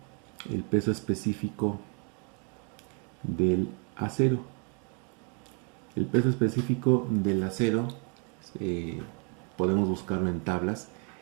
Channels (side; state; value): left; quieter; 35.5 dB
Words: el peso específico del acero. El peso específico del acero podemos buscarlo en tablas